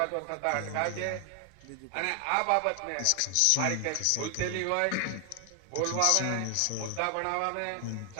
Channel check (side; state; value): both; different; correlation 0.00